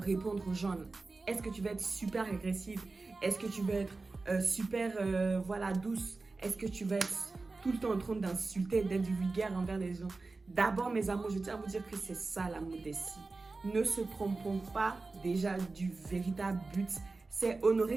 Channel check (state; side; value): quieter; left; 3.7 dB